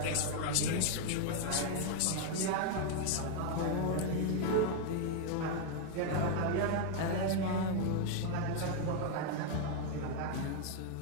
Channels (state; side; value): different; both; correlation 0.00